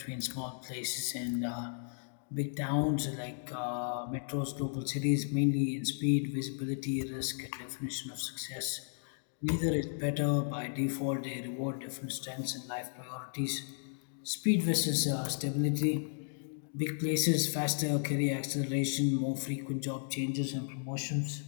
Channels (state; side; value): silent; right; digital silence